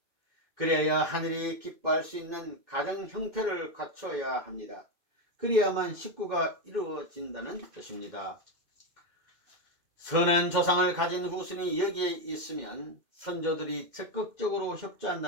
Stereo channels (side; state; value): left; late; 2.5 ms